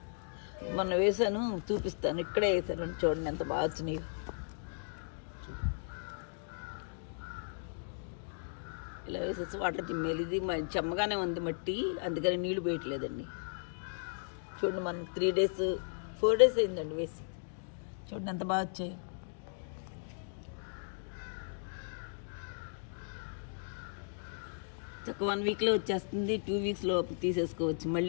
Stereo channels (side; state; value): right; silent; digital silence